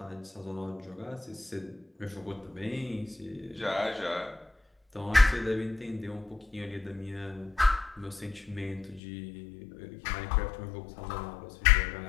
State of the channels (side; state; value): right; drops out; at 9.0 s